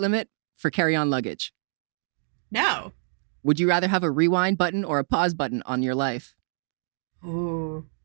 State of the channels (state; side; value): silent; left; digital silence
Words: limit for carry-on luggage? No. Would you rather have a rewind button or a pause button on your life? Ooh,